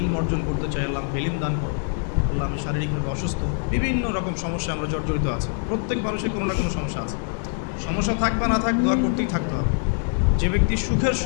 অর্জন করতে চাই, আল্লাহ আমাকে ইলম দান করো। আল্লাহ, আমি শারীরিকভাবে অসুস্থ। বিভিন্ন রকম সমস্যা আমরা জর্জরিত আছে। প্রত্যেক মানুষের কোনো না কোনো সমস্যা আছে। সমস্যা থাক বা না থাক, দোয়া করতেই থাকতে হবে। যে ব্যক্তি সুখের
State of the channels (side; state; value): right; silent; 56 dB below the other